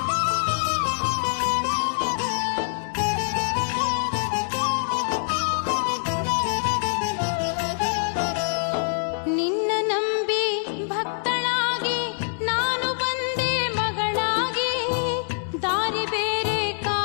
ನಿನ್ನ ನಂಬಿ ಭಕ್ತಳಾಗಿ ನಾನು ಬಂದೆ ಮಗಳಾಗಿ ದಾರಿ ಬೇರೆ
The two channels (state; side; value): silent; right; digital silence